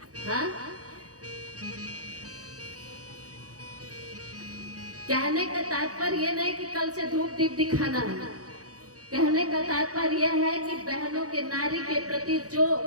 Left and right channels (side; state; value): left; late; 0.67 ms